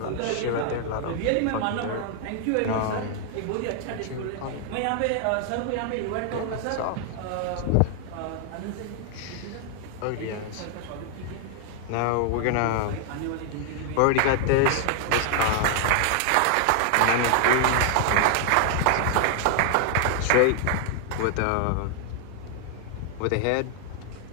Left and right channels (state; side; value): different; both; correlation 0.00